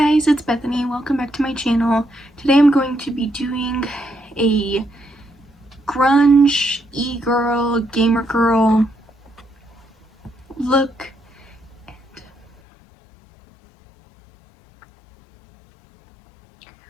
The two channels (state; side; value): drops out; right; at 12.6 s